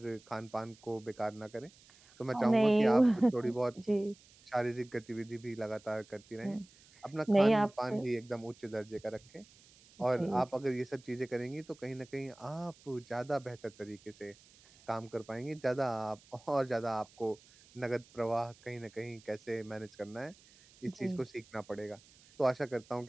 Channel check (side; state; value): right; noise; hiss, 26 dB below the sound